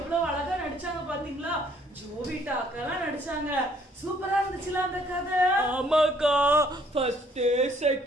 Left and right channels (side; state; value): both; normal; correlation 0.63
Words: அழகா நடிச்சாங்க பாத்தீங்களா? ஜோவிட்டா அக்கா நடிச்சாங்க. சூப்பரா இருந்துச்சுல அந்த கதை. ஆமாக்கா, ஃபர்ஸ்ட்